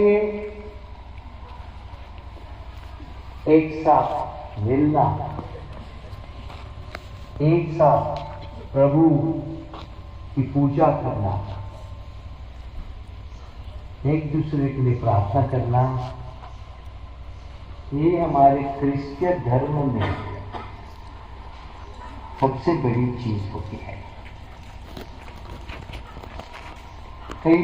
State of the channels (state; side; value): identical; both; correlation 1.00